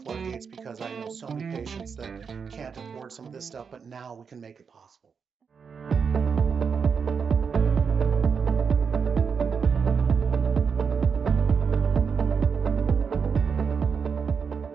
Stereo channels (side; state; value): left; quieter; 6.1 dB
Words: floodgates because I know so many patients that can't afford some of this stuff, but now we can make it possible.